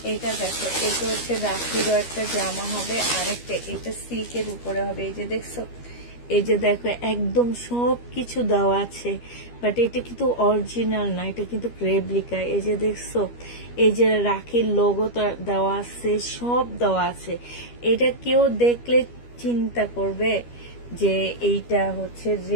এটা দেখো, এটা হচ্ছে রাখিরও একটা জামা হবে, আরেকটা এটা সিল্কের উপরে হবে। এই যে দেখছো, এই যে দেখো একদম সবকিছু দেওয়া আছে, বাট এটা কিন্তু অরিজিনাল না, এটা কিন্তু রেপ্লিকা। এই যে দেখছো, এই যে রাখির লোগো দেওয়া আছে, সব দেওয়া আছে। এটা কেউ দেখলে চিন্তা করবে যে এইটা হচ্ছে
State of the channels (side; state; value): right; late; 12 ms